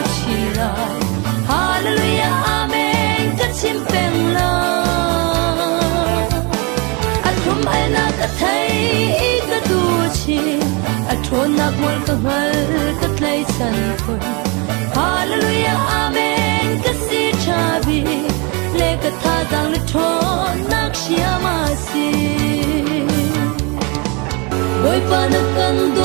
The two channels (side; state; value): left; quieter; 30.3 dB